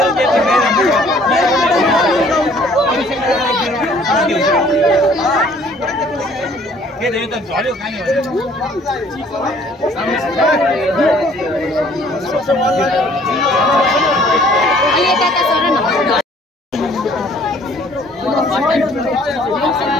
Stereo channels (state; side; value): normal; both; correlation 0.58